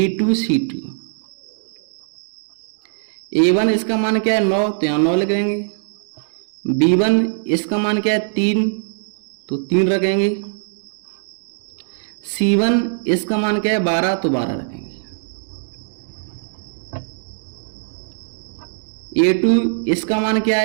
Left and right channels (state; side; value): silent; left; digital silence